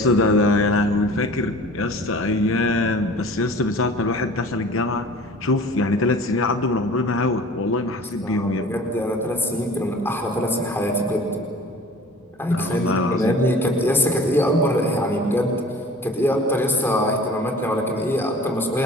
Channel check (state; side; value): normal; both; correlation 0.44